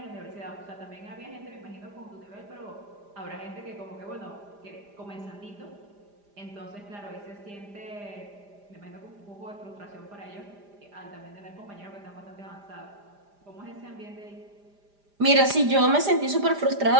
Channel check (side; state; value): left; late; 5.0 ms